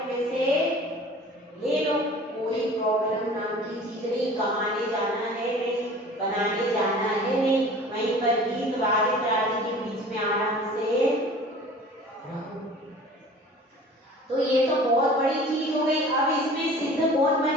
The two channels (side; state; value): both; normal; correlation 0.44